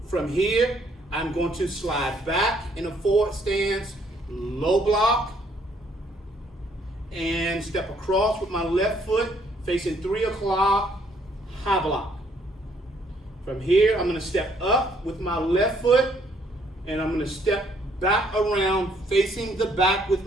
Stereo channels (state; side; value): normal; both; correlation 0.66